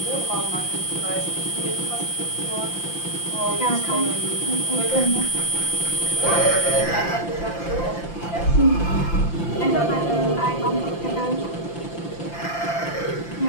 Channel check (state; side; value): late; right; 5.9 ms